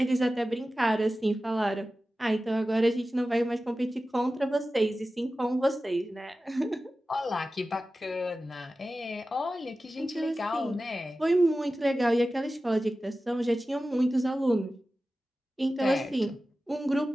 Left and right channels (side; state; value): both; normal; correlation 0.95